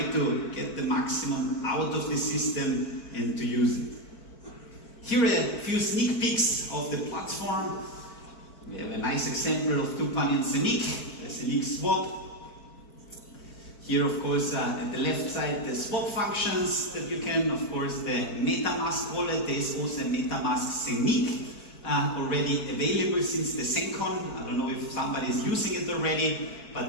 to get the maximum out of the system and to use it. Here are a few sneak peeks of the platform. We have a nice example of Tupan and Zeniq, the Zeniq swap. Here, of course, at the left side, the swap functions that you can, of course, the MetaMask wallet. There is also a MetaMask Zeniq. Already available since the SENCon. I don't know if somebody is using it already, but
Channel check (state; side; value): late; right; 4.5 ms